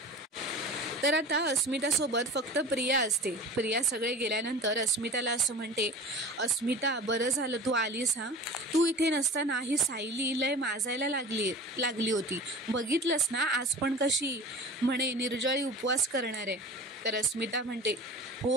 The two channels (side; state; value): both; normal; correlation 0.37